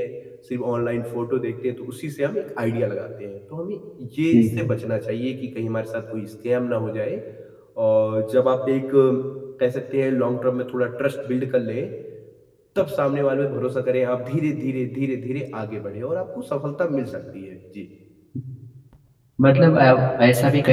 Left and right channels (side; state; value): both; identical; correlation 1.00